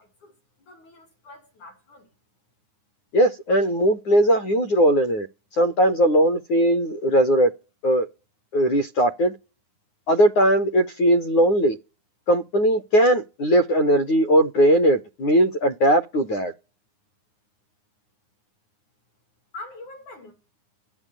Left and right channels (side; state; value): right; late; 9.7 ms